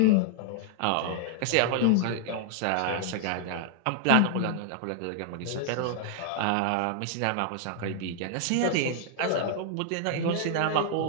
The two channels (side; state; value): both; different; correlation 0.00